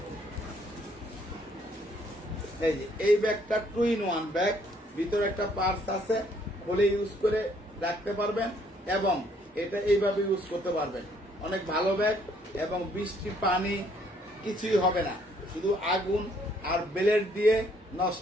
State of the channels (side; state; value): both; normal; correlation 0.66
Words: এই যে এই ব্যাগটা 2-in-1 ব্যাগ, ভিতরে একটা পার্স আছে, খুলে ইউজ করে রাখতে পারবেন এবং এটা এইভাবে ইউজ করতে পারবেন। অনেক ভালো ব্যাগ এবং বৃষ্টি পানি কিছুই হবে না, শুধু আগুন আর ব্লেড দিয়ে